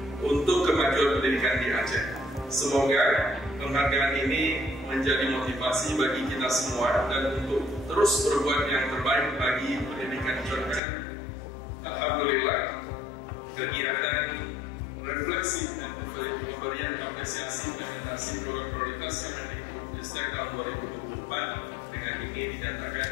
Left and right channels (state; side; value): drops out; right; at 10.8 s